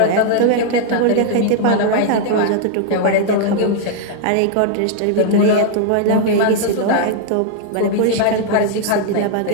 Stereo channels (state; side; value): different; both; correlation -0.01